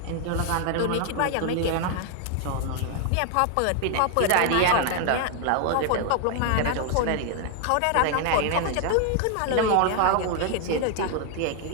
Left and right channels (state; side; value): different; both; correlation 0.00